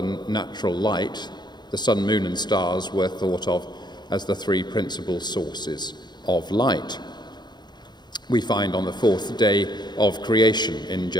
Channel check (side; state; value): right; late; 0.21 ms